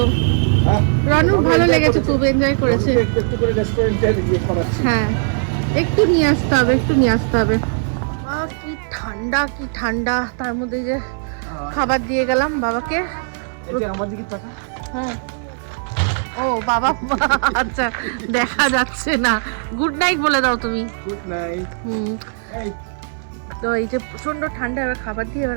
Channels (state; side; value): silent; left; 58 dB below the other